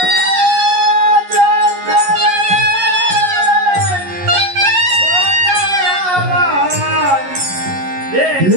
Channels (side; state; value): left; late; 11 ms